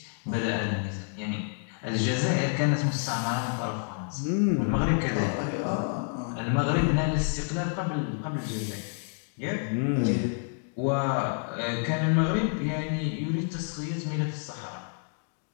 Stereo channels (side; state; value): right; silent; 59 dB below the other